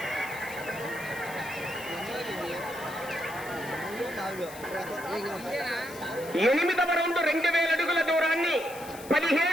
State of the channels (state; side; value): noise; left; hiss, 16 dB below the sound